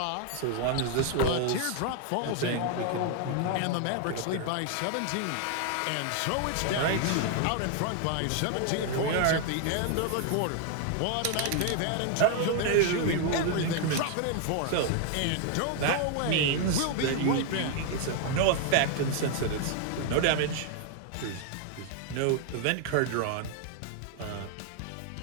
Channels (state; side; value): different; both; correlation 0.00